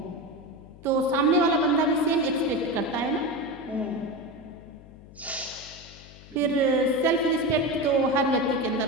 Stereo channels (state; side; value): noise; left; hum, 20 dB below the sound